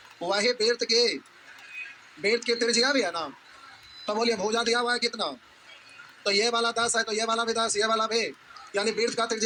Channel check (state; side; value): identical; both; correlation 1.00